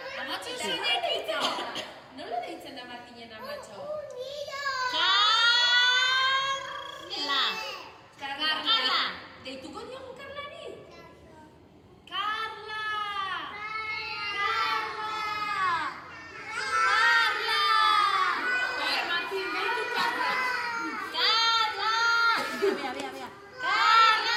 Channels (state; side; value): identical; both; correlation 1.00